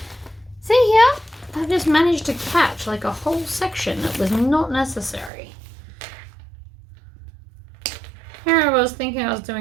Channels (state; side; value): drops out; left; at 5.3 s